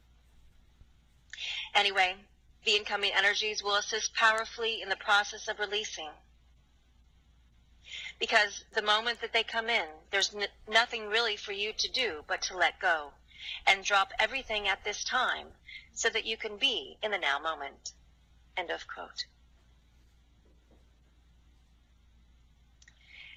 Anyway, the incoming energies will assist powerfully in the process of releasing. Because the moment that they come in, there's nothing really for you to do but to let go and drop everything at this time so that you can be in the now moment. End of quote.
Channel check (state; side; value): identical; both; correlation 1.00